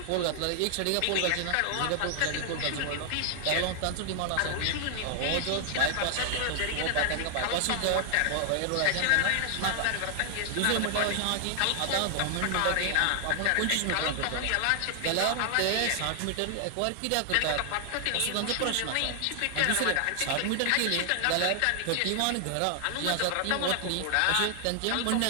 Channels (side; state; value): both; different; correlation 0.00